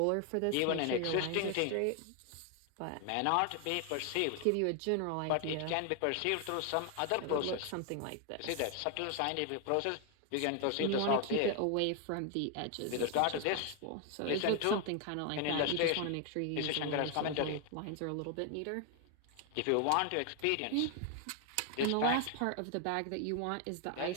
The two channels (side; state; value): both; different; correlation 0.00